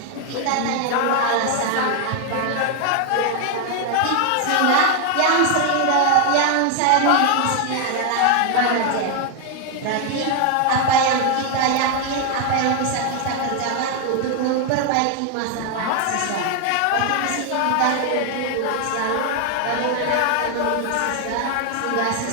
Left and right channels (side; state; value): both; different; correlation 0.01